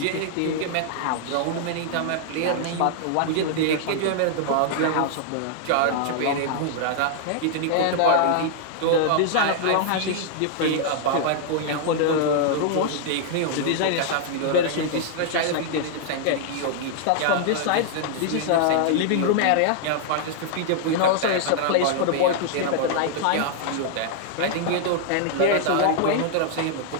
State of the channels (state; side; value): different; both; correlation -0.01